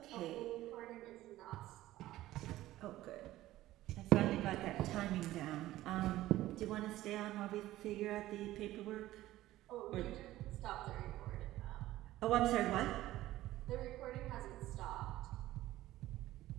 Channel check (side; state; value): left; quieter; 15.5 dB